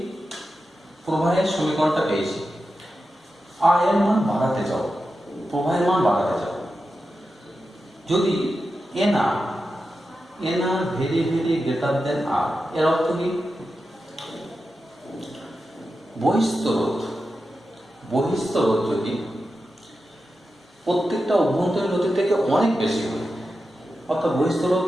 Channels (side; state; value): both; normal; correlation 0.91